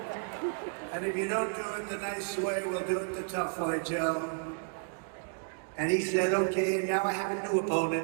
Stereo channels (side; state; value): left; silent; 56 dB below the other